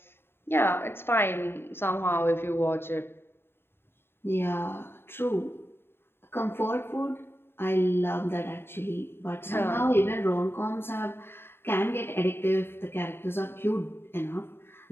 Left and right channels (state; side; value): late; right; 0.11 ms